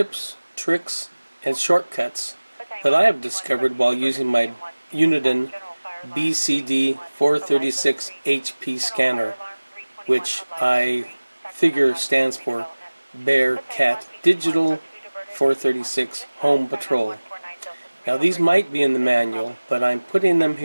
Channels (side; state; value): both; inverted; correlation -1.00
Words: tricks, and shortcuts that I have discovered while using my Uniden BCD 436 HP scanner, which I figure stands for Bear Cat Digital 436 Home Patrol. Now these might be in the manual, but I'm putting them